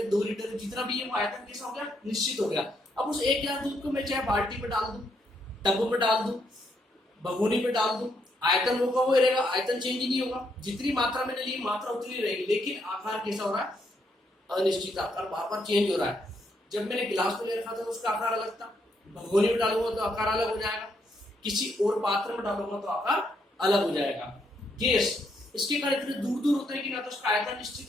2 लीटर है, जितना भी है वो आयतन कैसा हो गया, निश्चित हो गया। अब उस 1 गिलास दूध को मैं चाहे बाल्टी में डाल दूं, टब में डाल दूं, भगोनी में डाल दूं, आयतन होगा वो रहेगा, आयतन चेंज नहीं होगा। जितनी मात्रा मैंने ली मात्रा उतनी रहेगी, लेकिन आकार कैसा हो रहा है, अनिश्चित आकार बार बार चेंज हो रहा है। जब मैंने गिलास में ले रखा था तो उसका आकार अलग था, भगोनी में डालूंगा तो आकार अलग हो जाएगा, किसी और पात्र में डालूंगा तो आकार अलग हो जाएगा। गैस, इसके कारण इतने दूर दूर होते हैं कि ना तो उसका आयतन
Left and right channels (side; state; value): both; normal; correlation 0.76